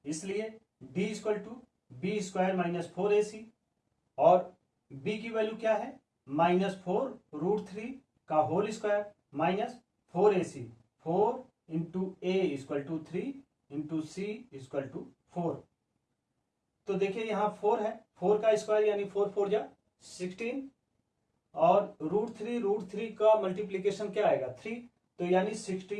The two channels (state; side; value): identical; both; correlation 1.00